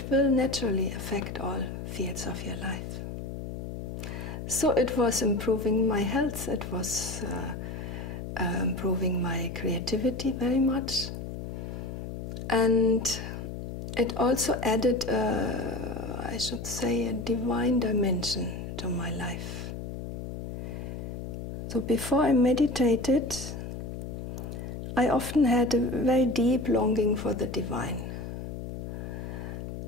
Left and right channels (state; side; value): noise; left; hum, 7 dB below the sound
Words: will naturally affect all fields of your life. So it was improving my health, it was improving my creativity very much. And it also added, I should say, a divine dimension to my life. So before I meditated, I often had a very deep longing for the divine.